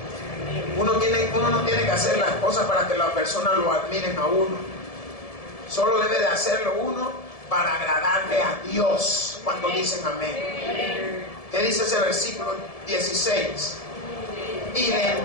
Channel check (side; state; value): right; late; 1.7 ms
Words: Uno no tiene que hacer las cosas para que las personas lo admiren a uno. Solo debe de hacerlo uno para agradarle a Dios cuando dicen amén. ¿Qué dice ese versículo 16? Y le